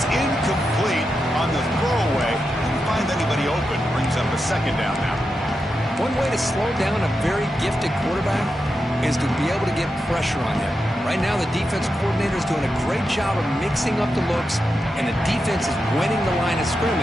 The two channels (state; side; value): normal; both; correlation 0.88